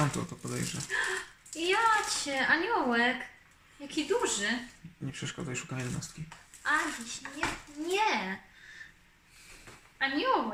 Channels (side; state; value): both; identical; correlation 1.00